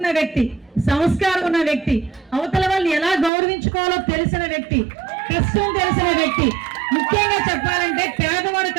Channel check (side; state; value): left; drops out; at 3.3 s